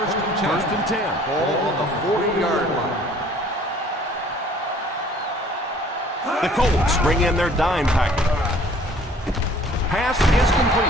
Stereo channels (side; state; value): both; normal; correlation 0.54